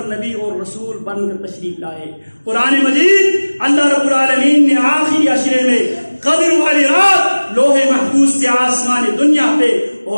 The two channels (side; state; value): both; inverted; correlation -1.00